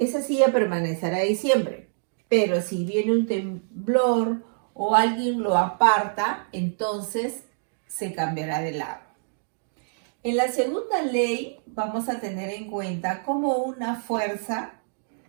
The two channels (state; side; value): silent; left; digital silence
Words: silla permanecerá ahí siempre. Pero si viene un temblor o alguien lo aparta, entonces se cambiará de lado. En la segunda ley vamos a tener en cuenta cómo una fuerza